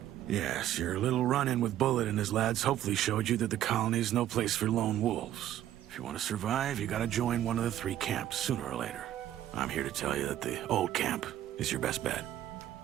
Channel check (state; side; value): quieter; left; 12.3 dB